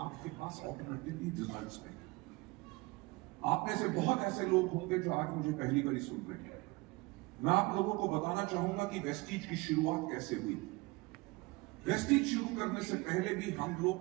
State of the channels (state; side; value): quieter; left; 23.4 dB